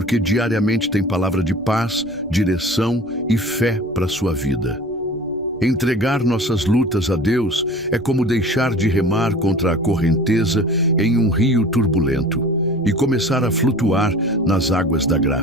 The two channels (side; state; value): left; noise; rumble, 25 dB below the sound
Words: diariamente tem palavra de paz, direção e fé para a sua vida. Entregar nossas lutas a Deus é como deixar de remar contra a correnteza em um rio turbulento e começar a flutuar nas águas da